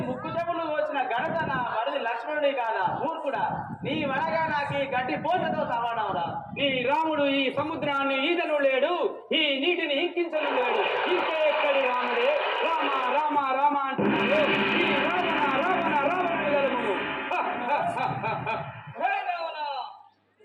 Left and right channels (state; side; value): identical; both; correlation 1.00